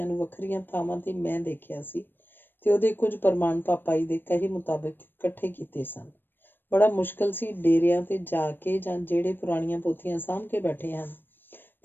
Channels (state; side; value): late; right; 0.095 ms